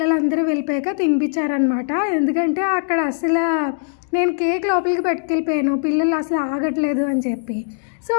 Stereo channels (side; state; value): right; silent; digital silence